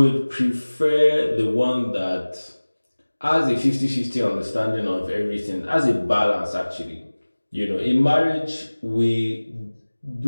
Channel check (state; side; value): inverted; both; correlation -1.00